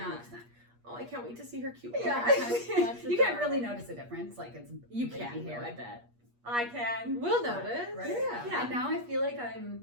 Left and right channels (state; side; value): late; left; 8.4 ms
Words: 100%. Oh, I can't wait to see her cute. Yeah, That's you can't adorable. really notice a difference. Like it's You baby can, hair. though, I bet. I can. We'll notice. Right? Yeah. And now I feel like